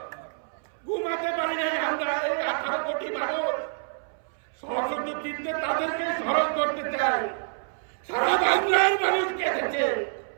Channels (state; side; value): silent; left; 60 dB below the other